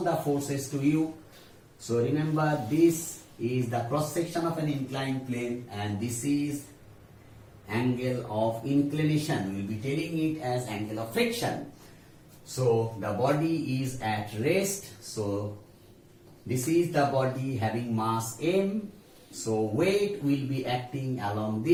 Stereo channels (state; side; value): identical; both; correlation 1.00